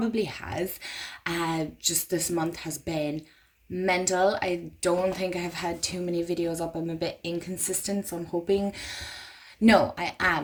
has. Just this month has been mental. I don't think I have had too many videos up. I'm a bit inconsistent, so I'm hoping. No, I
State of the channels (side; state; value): both; identical; correlation 1.00